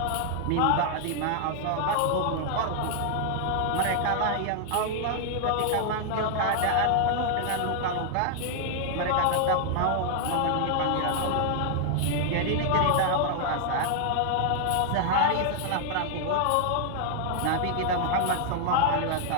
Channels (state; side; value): different; both; correlation 0.00